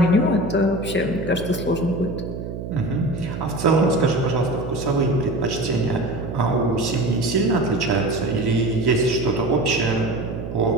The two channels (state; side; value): noise; right; hum, 8 dB below the sound